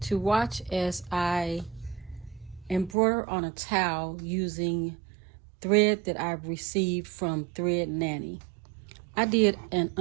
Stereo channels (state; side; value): drops out; left; at 3.0 s